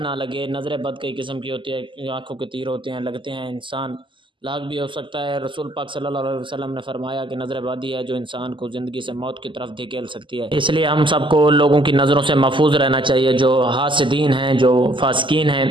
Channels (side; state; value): left; late; 0.24 ms